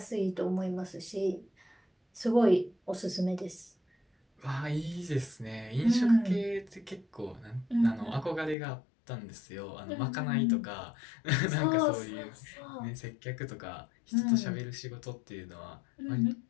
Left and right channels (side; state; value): right; drops out; at 8.6 s